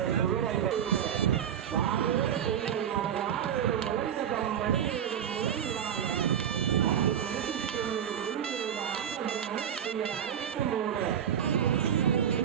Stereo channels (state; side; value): quieter; left; 9.0 dB